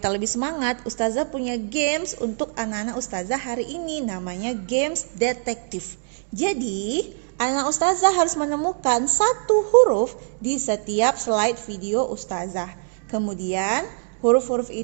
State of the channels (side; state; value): left; silent; digital silence